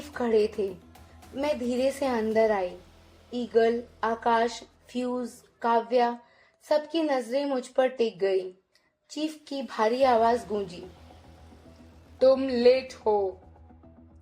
खड़े थे। मैं धीरे से अंदर आई। ईगल, आकाश, फ्यूज, काव्या, सबकी नजरें मुझ पर टिक गई। चीफ की भारी आवाज गूंजी, तुम लेट हो।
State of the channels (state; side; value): identical; both; correlation 1.00